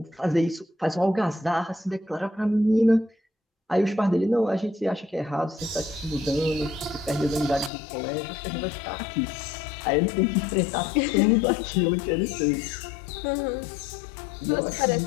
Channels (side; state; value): right; drops out; at 7.7 s